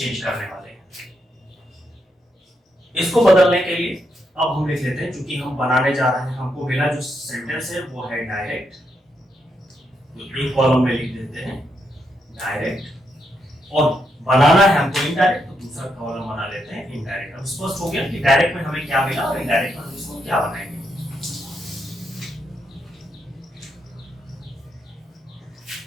करने वाले हैं। इसको बदलने के लिए अब हम लिख लेते हैं, क्योंकि हम बनाने जा रहे हैं, हमको मिला जो सेंटेंस है वो है डायरेक्ट, एक कॉलम में लिख देते हैं डायरेक्ट, और बनाना है हमको इनडायरेक्ट तो दूसरा कॉलम बना लेते हैं इनडायरेक्ट। अब स्पष्ट हो गया कि डायरेक्ट में हमें क्या मिला और इनडायरेक्ट में हम इसको क्या बनाएंगे।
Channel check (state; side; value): normal; both; correlation 0.80